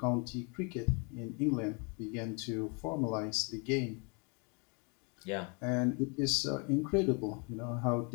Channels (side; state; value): right; quieter; 34.3 dB